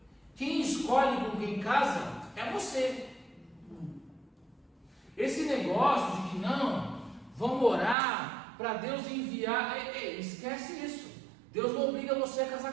Quem escolhe com quem casa é você. Esse negócio de que não, vamos orar para Deus enviar, esquece isso. Deus não obriga você a casar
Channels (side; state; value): left; drops out; at 8.0 s